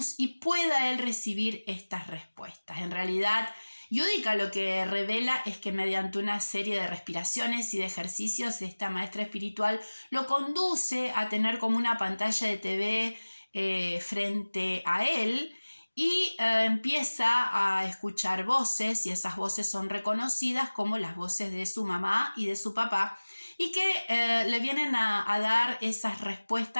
y pueda él recibir estas respuestas. En realidad, Yudica lo que revela es que mediante una serie de respiraciones y de ejercicios, esta maestra espiritual lo conduce a tener como una pantalla de TV frente a él y empieza a escuchar voces, y esas voces son reconocidas como las voces de su mamá y de su papá, y que le vienen a dar esas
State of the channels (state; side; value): inverted; both; correlation -1.00